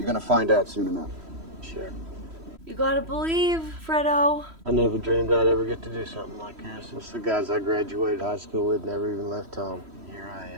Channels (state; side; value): late; left; 3.1 ms